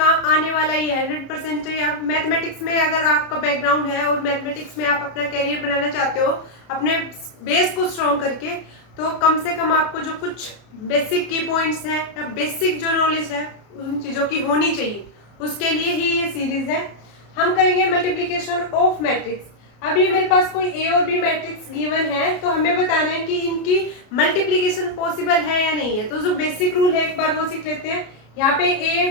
आने वाला ही है 100%। या मैथमेटिक्स में अगर आपका बैकग्राउंड है और मैथमेटिक्स में आप अपना कैरियर बनाना चाहते हो अपने बेस को स्ट्रॉन्ग करके, तो कम से कम आपको जो कुछ बेसिक की पॉइंट्स हैं या बेसिक जो नॉलेज है उन चीज़ों की होनी चाहिए, उसके लिए ही ये सीरीज है। हम करेंगे मल्टीप्लिकेशन ऑफ मैट्रिक्स। अभी मेरे पास कोई ए और बी मैट्रिक्स गिवन है तो हमें बताना है कि इनकी मल्टीप्लिकेशन पॉसिबल है या नहीं है। तो जो बेसिक रूल है एक बार वो सीख लेते हैं। यहाँ पे ए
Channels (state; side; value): late; right; 33 ms